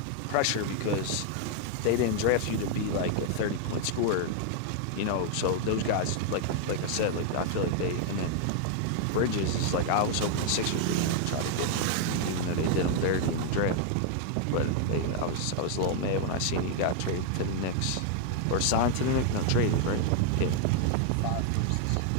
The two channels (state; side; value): different; both; correlation 0.00